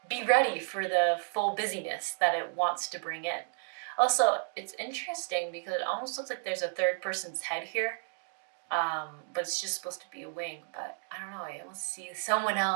be ready for the full busyness that it wants to bring in. Also, it's interesting because it almost looks like there's a third person's head here. But it's just supposed to be a wing, but I don't know, I almost see someone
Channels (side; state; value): left; silent; 56 dB below the other